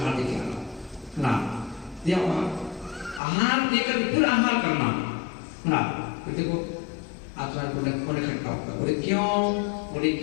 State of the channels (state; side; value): drops out; right; at 3.2 s